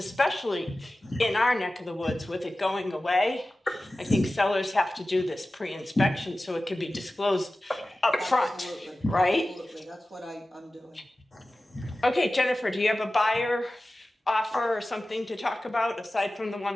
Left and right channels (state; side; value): normal; both; correlation 0.96